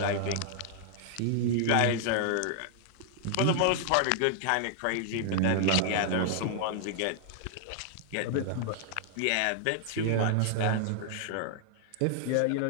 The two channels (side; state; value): both; different; correlation 0.00